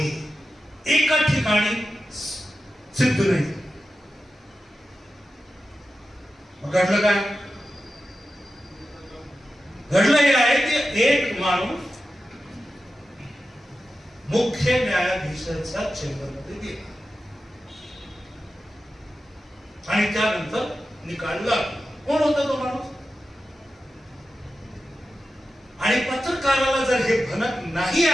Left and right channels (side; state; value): both; normal; correlation 0.92